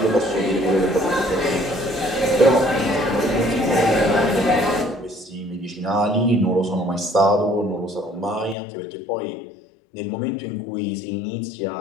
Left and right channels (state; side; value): drops out; right; at 8.6 s